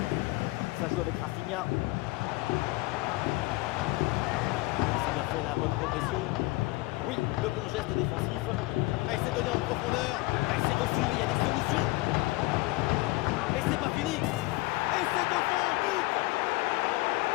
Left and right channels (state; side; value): quieter; right; 21.6 dB